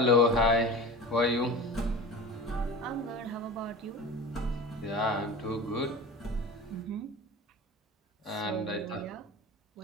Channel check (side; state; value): both; normal; correlation 0.34